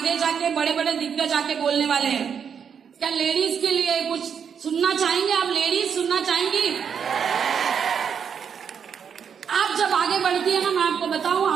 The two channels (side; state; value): left; quieter; 7.2 dB